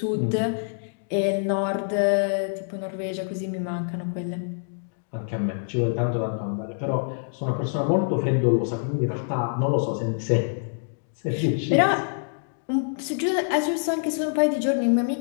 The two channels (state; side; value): silent; right; digital silence